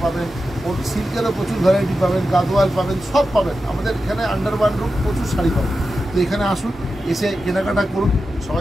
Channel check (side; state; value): both; normal; correlation 0.91